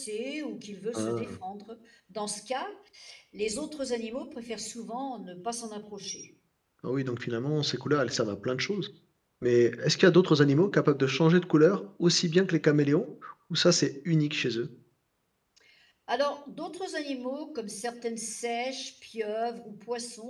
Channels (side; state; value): both; identical; correlation 1.00